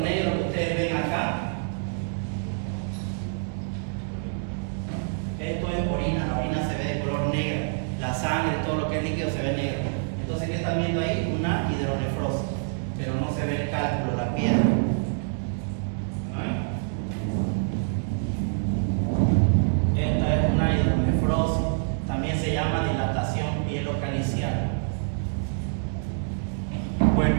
que ustedes ven acá, esto es orina. La orina se ve de color negro, la sangre, todo lo que es líquido se ve negro. Entonces, ¿qué están viendo ahí? Una hidronefrosis, pero no se ve el cálculo, la piedra. Esta es una hidronefrosis, también se llama dilatación pielocalicial. Bueno,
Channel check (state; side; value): silent; left; digital silence